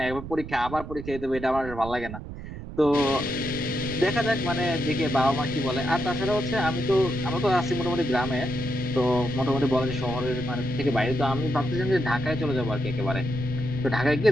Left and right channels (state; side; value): noise; right; rumble, 11 dB below the sound